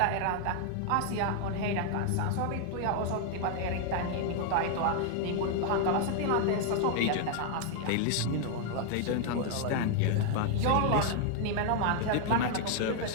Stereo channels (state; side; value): different; both; correlation 0.00